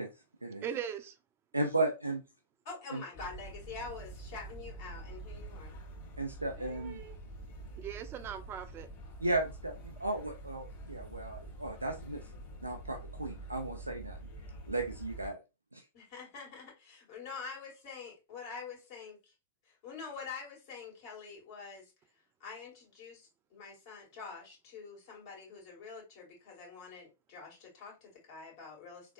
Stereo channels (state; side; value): inverted; both; correlation -0.49